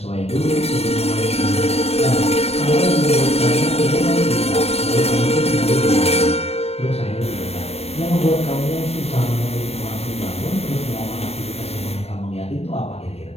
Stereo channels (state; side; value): late; right; 0.30 ms